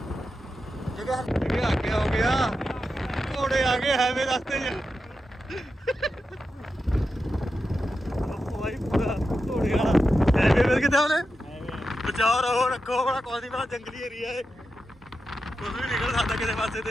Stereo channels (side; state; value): both; normal; correlation 0.89